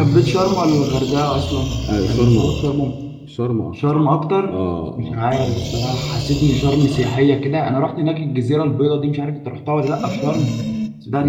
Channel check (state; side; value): identical; both; correlation 1.00